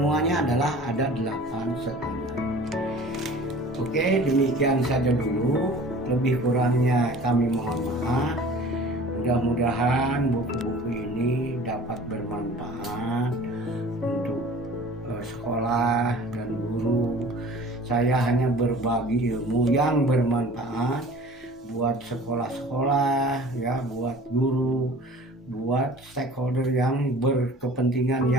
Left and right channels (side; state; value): both; normal; correlation 0.45